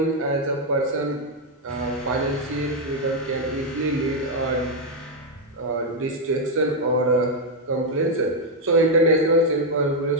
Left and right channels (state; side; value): normal; both; correlation 0.01